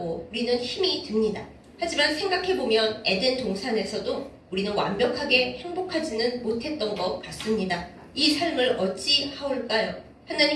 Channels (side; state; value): both; identical; correlation 1.00